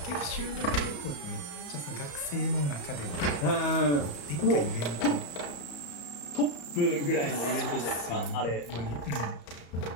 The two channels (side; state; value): right; late; 34 ms